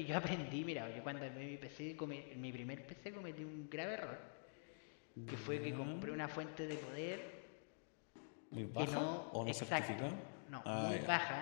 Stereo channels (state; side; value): silent; right; digital silence